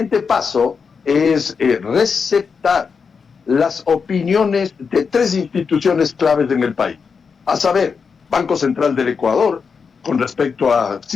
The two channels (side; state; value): right; quieter; 5.7 dB